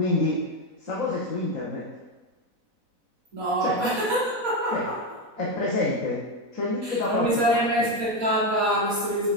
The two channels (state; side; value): late; left; 4.0 ms